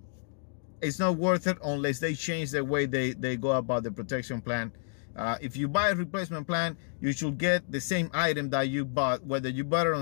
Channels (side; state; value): right; silent; digital silence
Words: It's not worth it unless they change the way they go about the protection plan. If you buy a replacement plan, you should get the same item that you bought. Whether you bought it